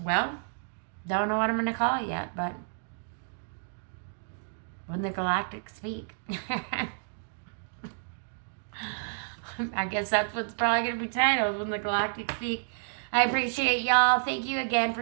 well, don't know what I'm going to call it yet, but When the Galactic Speak. I guess that's what's probably going to be titled, When the Galactic Speak. I appreciate y'all. Thank you again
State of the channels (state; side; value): silent; left; digital silence